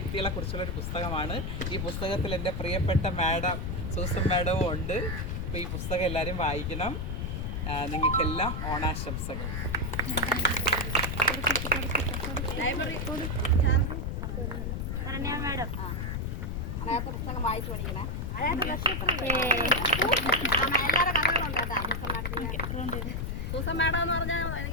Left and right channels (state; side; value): noise; left; rumble, 2 dB below the sound